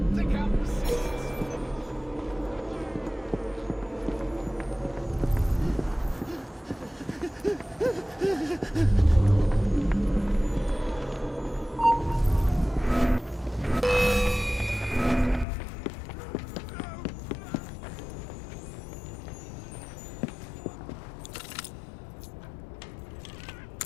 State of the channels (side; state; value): right; drops out; at 15.5 s